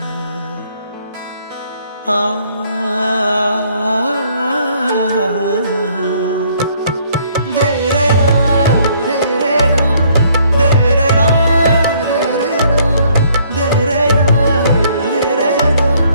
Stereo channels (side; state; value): both; inverted; correlation -0.64